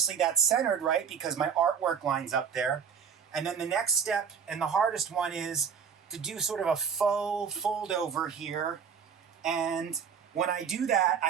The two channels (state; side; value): quieter; left; 7.0 dB